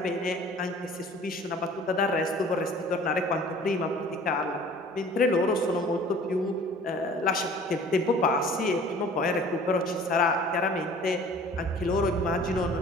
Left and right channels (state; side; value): normal; both; correlation 0.48